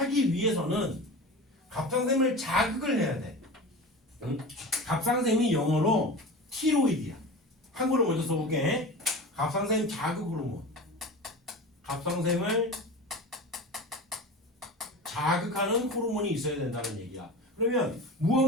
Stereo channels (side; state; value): both; normal; correlation 0.31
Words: 위해서는 갑상샘을 자극을 해야 돼. 응? 갑상샘이 영어로 티로이드야. 한글로 먼저 써볼게. 갑상샘 자극 호르몬. 갑상샘을 자극하는 호르몬이 있어야 된다는 얘기야. 그러면